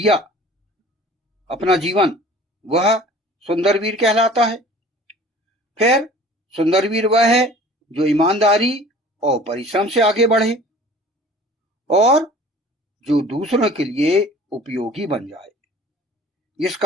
अपना जीवन, वह सुंदर वीर कहलाता है। फिर सुंदर वीर वह है जो ईमानदारी और परिश्रम से आगे बढ़े और जो दूसरों के लिए उपयोगी बन जाए,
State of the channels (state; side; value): normal; both; correlation 0.47